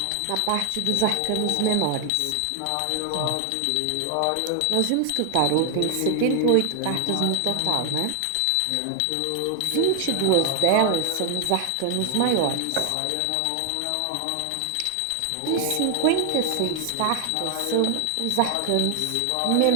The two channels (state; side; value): different; both; correlation 0.00